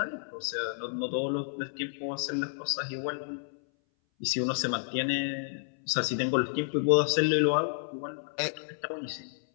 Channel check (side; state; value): right; silent; 57 dB below the other